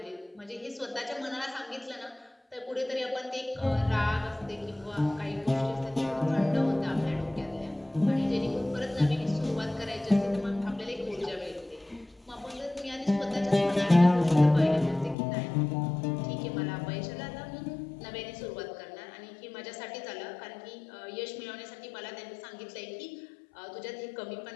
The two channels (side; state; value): right; drops out; at 15.2 s